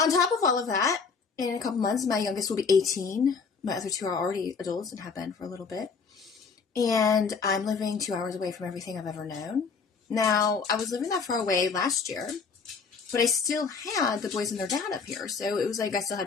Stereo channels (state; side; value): quieter; right; 5.2 dB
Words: top of all of that, in a couple months, my youngest will be 18. My other two are already adults and have been for a little bit. And I'm living 2 hours away from everything I've ever known. Now, I was living that far away last year, but I still had the boys and their dad up here. So it was like I still